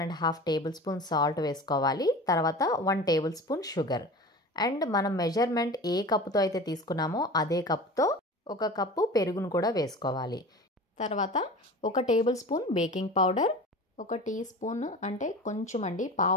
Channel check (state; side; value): normal; both; correlation 0.35